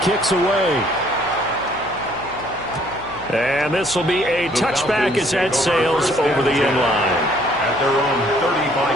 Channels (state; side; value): noise; left; hum, 18 dB below the sound